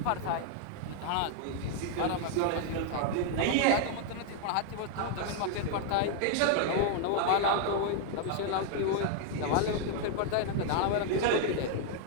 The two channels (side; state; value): both; different; correlation 0.00